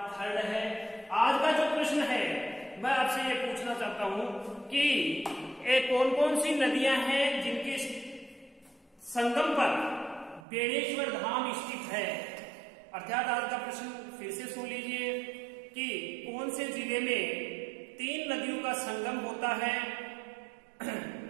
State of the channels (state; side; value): drops out; left; at 10.5 s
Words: 3 है। आज का जो प्रश्न है मैं आपसे ये पूछना चाहता हूं कि कौन कौन सी नदियां हैं जिनके संगम पर बेणेश्वर धाम स्थित है। अर्थात आज का प्रश्न फिर से सुन लीजिए कि कौन से जिले में 3 नदियों का संगम होता है